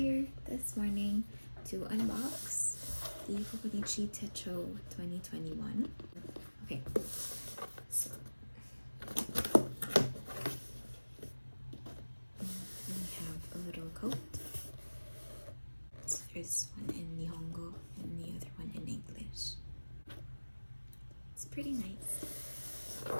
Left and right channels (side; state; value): both; inverted; correlation -1.00